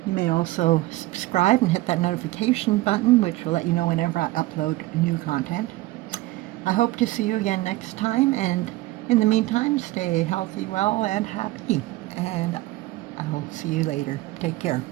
You may also subscribe and hit that notification button, which will let you know whenever I upload new content. I hope to see you again next time, and in the meantime, stay healthy, well, and happy. And I'll see you later. Take care.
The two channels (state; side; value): quieter; left; 18.4 dB